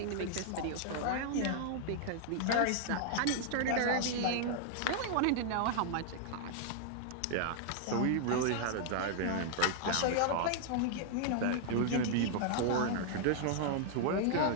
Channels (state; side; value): different; both; correlation -0.01